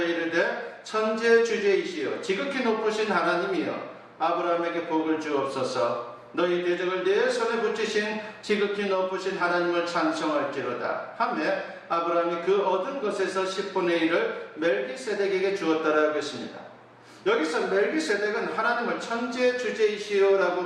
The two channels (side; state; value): both; identical; correlation 1.00